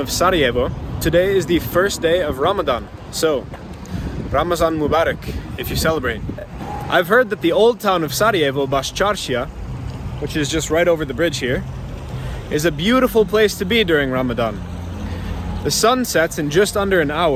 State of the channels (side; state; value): both; identical; correlation 1.00